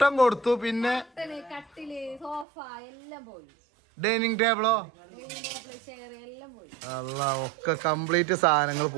കൊടുത്തു, പിന്നെ കട്ടില് സോഫ എല്ലാം പോയി. ഡൈനിങ് ടേബിളോ അല്ല ഒക്കെ കംപ്ലീറ്റ് സാധനങ്ങൾ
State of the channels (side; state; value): left; drops out; at 2.5 s